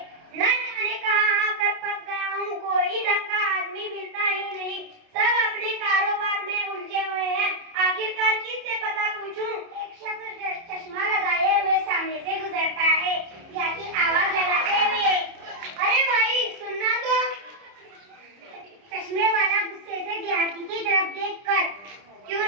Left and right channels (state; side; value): late; left; 30 ms